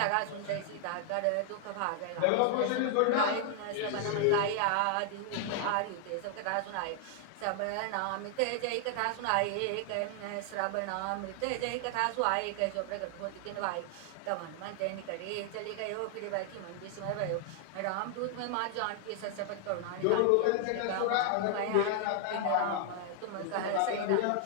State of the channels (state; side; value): different; both; correlation 0.00